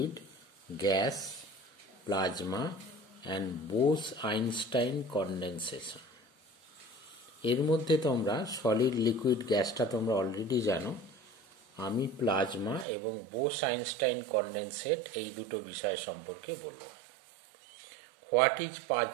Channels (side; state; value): left; drops out; at 12.9 s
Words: gas, plasma and Bose Einstein condensation. এর মধ্যে তোমরা সলিড, লিকুইড, গ্যাসটা তোমরা অলরেডি জানো। আমি প্লাজমা এবং বোস-আইনস্টাইন কনডেনসেট এই দুটো বিষয় সম্পর্কে বলবো। What is